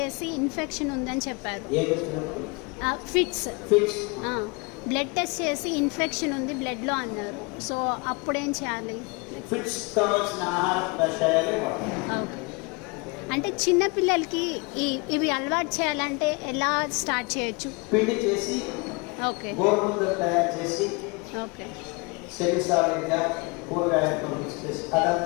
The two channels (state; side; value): quieter; right; 29.3 dB